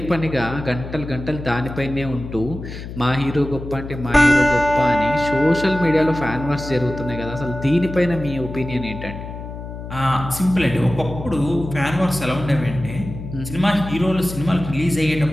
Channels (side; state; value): left; noise; hum, 10 dB below the sound